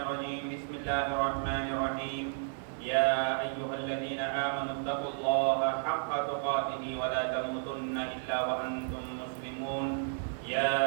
الرجيم. بسم الله الرحمن الرحيم. يا أيها الذين آمنوا اتقوا الله حق تقاته ولا تموتن إلا وأنتم مسلمون.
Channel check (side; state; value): left; silent; digital silence